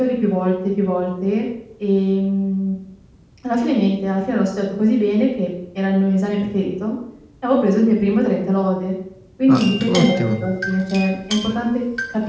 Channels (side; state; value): both; identical; correlation 1.00